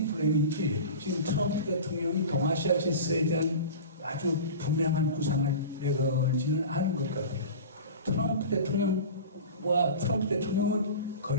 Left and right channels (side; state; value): both; inverted; correlation -0.33